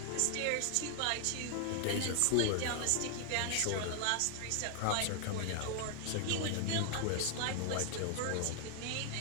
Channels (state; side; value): different; both; correlation 0.00